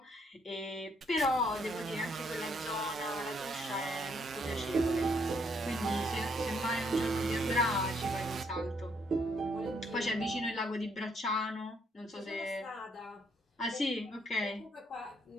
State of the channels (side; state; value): both; normal; correlation 0.71